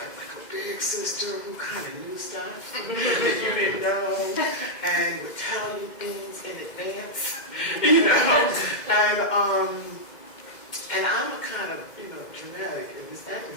big sister who kind of knew stuff that you didn't know and would tell you things in advance, you know. And I'm a kind of, you know, dramatic, and Miss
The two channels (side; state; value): right; late; 2.1 ms